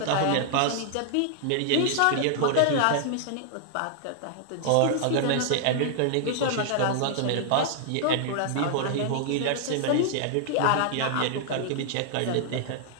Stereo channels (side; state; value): both; different; correlation -0.01